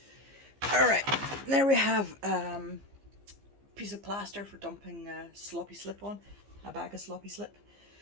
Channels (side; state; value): left; late; 15 ms